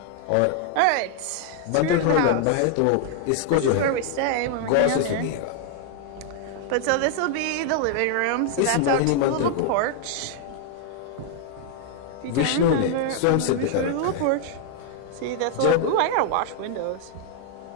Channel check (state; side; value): different; both; correlation 0.00